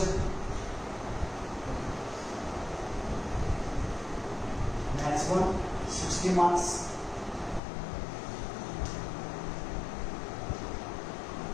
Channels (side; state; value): right; drops out; at 7.6 s